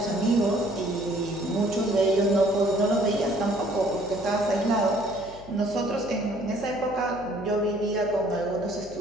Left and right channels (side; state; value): left; noise; hum, 19 dB below the sound